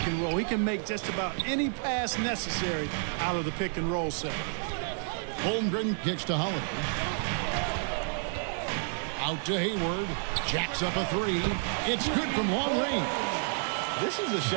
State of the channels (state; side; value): silent; left; 58 dB below the other